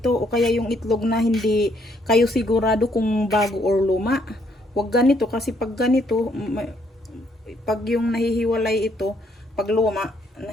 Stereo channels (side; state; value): both; normal; correlation 0.70